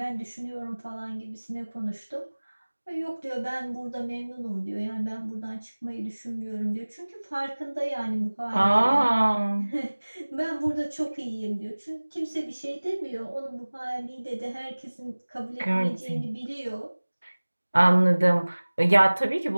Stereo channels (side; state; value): both; inverted; correlation -1.00